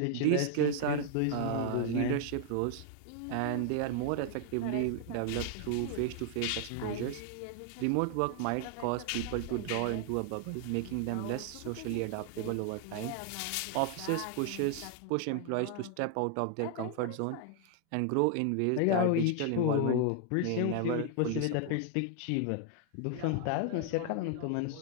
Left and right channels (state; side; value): different; both; correlation 0.00